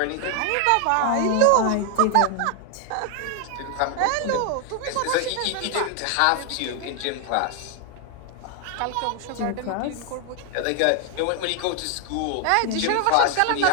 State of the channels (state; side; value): different; both; correlation 0.00